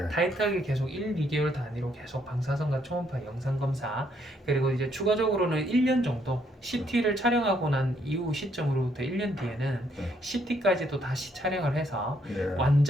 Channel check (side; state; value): both; normal; correlation 0.71